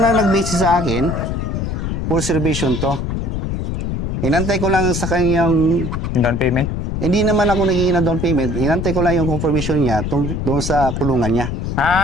na nag-message sa akin, full reservation to. Inantay ko lang sa kanyang, Yung down payment? hindi naman ako nagiging na down payment, inantay ko lang yung confirmation niya doon sa kulungan niya.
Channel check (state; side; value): noise; left; rumble, 2 dB below the sound